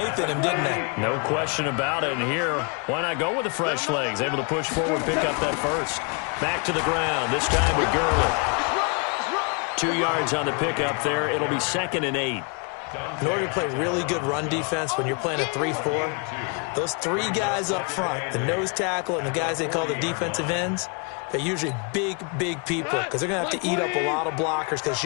in him, didn't they? No question about it. And here, why not go with the fresh legs? Able to push forward, pick up that first. Back to the ground, this time with Gurley. 2 yards on the pickup there. It'll be 2nd and 8. In order to play really good run defense when you're playing a 3-4, those 3 guys up front, the nose tackle and the guys they call the defensive ends, they're usually big people because they're going to have to eat up a lot of blockers because it's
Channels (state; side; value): quieter; right; 34.8 dB